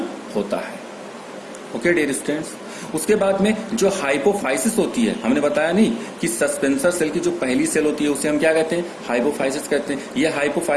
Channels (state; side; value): identical; both; correlation 1.00